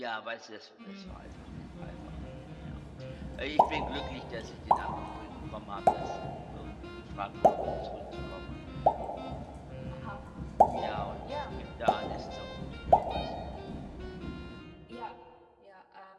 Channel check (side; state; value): both; identical; correlation 1.00